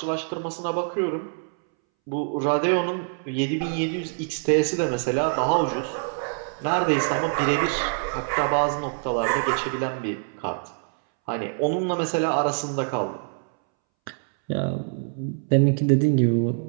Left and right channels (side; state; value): left; silent; 62 dB below the other